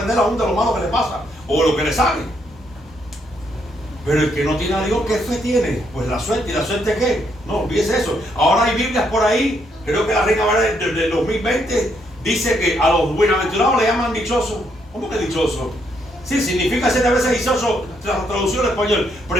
aún de lo malo que le pasa o lo que le sale. Pero el que no tiene a Dios, ¿qué fe tiene? Pues la suerte. ¿Y la suerte qué? No, olvídese eso. Ahora hay Biblias por ahí, creo que la Reina Valera del 2020 dice que a los buenaventurados le llaman dichosos. ¿Cómo que dichoso? Sí, significa 7 veces dichoso, traducción en español. Pero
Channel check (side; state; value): both; normal; correlation 0.74